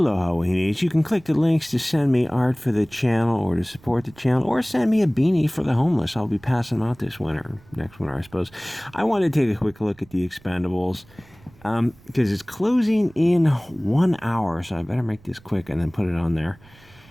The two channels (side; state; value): right; noise; rumble, 26 dB below the sound